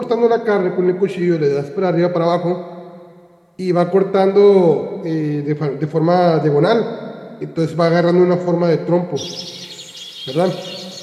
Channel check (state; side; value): identical; both; correlation 1.00